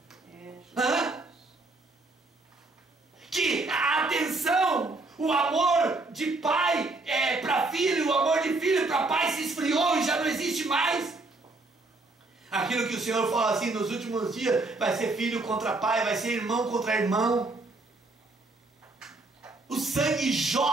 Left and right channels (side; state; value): left; quieter; 3.2 dB